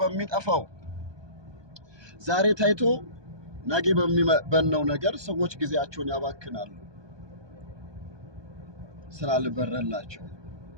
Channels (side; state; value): left; late; 1.2 ms